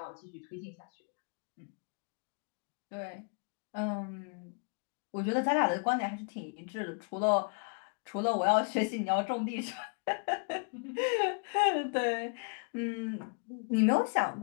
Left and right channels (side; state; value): right; quieter; 39.7 dB